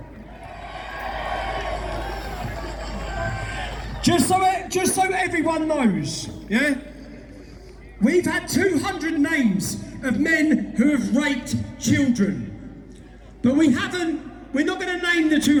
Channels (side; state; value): both; identical; correlation 1.00